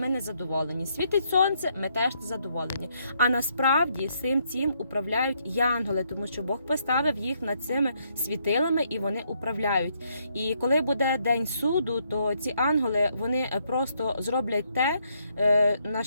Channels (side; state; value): both; inverted; correlation -0.73